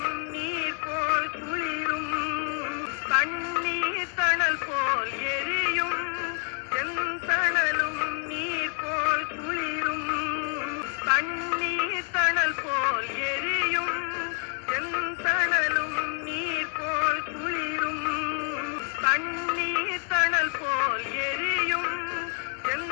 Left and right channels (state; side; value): quieter; right; 38.4 dB